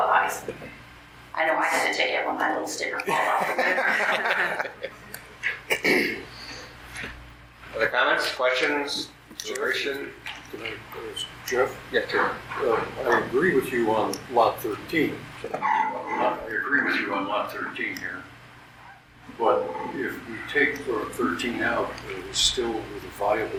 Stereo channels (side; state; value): both; identical; correlation 1.00